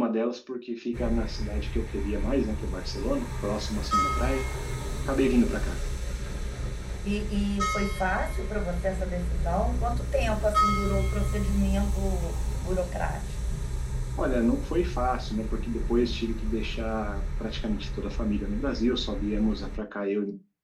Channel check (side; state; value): both; identical; correlation 1.00